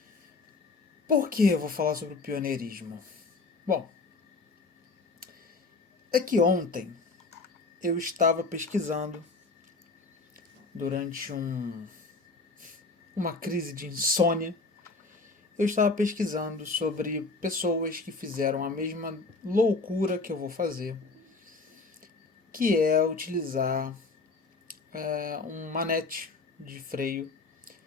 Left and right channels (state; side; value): quieter; right; 3.8 dB